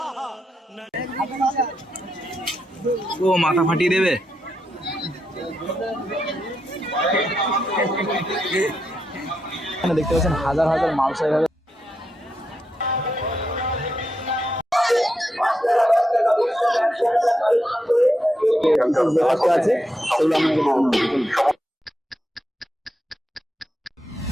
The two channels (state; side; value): normal; both; correlation 0.83